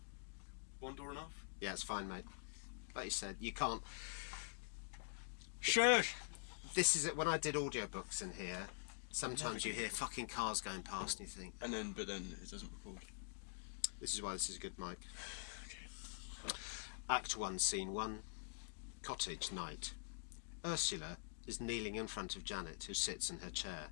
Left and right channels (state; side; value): silent; right; digital silence